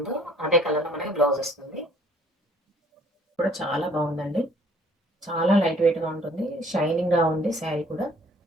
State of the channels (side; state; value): both; normal; correlation 0.58